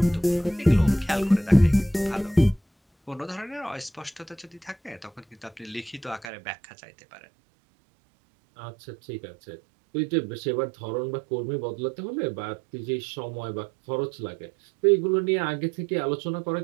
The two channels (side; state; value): left; drops out; at 6.2 s